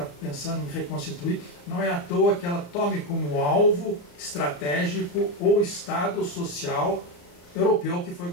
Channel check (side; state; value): right; late; 34 ms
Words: pensando em reconstituir. Não é à toa que ela tome como alvo estratégico o Estado social europeu que foi